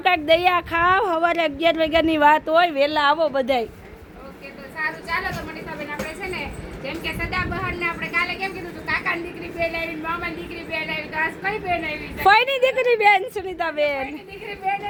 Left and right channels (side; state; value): both; identical; correlation 1.00